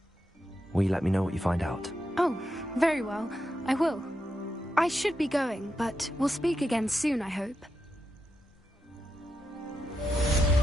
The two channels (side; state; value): both; normal; correlation 0.86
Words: Will you let me know what you find out? Oh, very well. I will. I should be going, but we'll speak again soon, I hope.